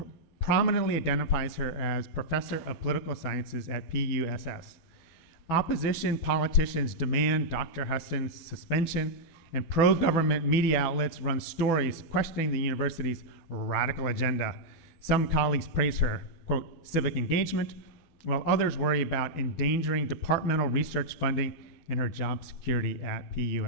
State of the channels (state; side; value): late; right; 12 ms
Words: prominently identifies her as Professor of Political Sciences at PUSS. Opposition politicians demand Dr. Huston's suspension, and pro-government media outlets run stories questioning the university's radical agenda. Some colleagues praise her, quote, civic engagement, while others worry about endangering departmental research funding and her job security at